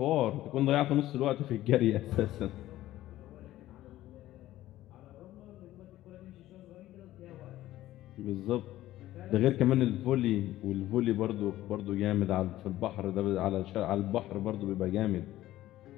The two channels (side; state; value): right; quieter; 14.9 dB